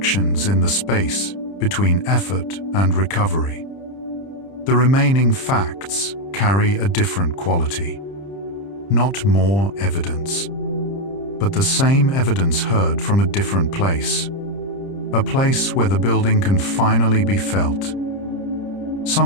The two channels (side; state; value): right; late; 30 ms